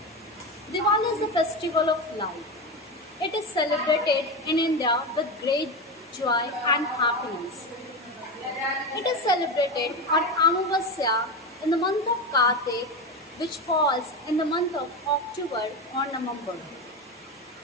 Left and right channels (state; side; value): normal; both; correlation 0.19